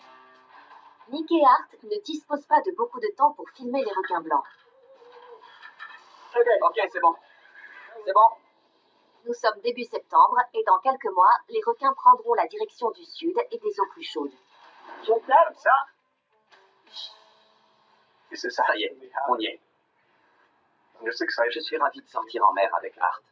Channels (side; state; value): both; identical; correlation 1.00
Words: Nick et Art ne disposent pas de beaucoup de temps pour filmer les requins blancs. Ok, c'est bon. C'est bon. Nous sommes début septembre et dans quelques mois, les requins prendront la direction du sud et des eaux plus chaudes. Comme ça. Ça y est, on y est. Je suis ravi de sortir en mer avec Art.